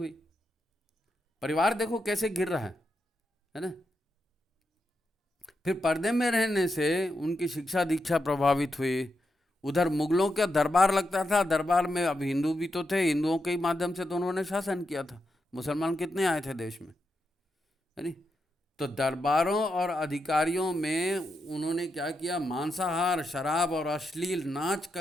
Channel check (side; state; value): both; normal; correlation 0.85